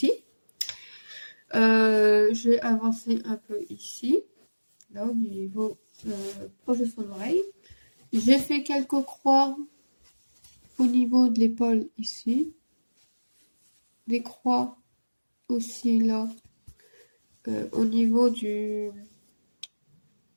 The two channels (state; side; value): inverted; both; correlation -1.00